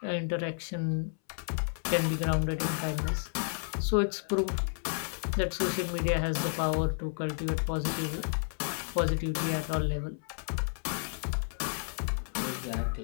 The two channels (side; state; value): right; silent; 57 dB below the other